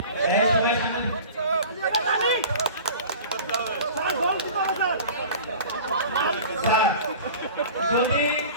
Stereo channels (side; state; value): both; inverted; correlation -0.40